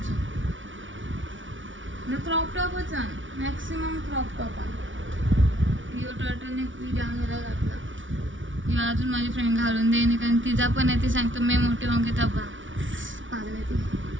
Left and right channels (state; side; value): late; left; 0.56 ms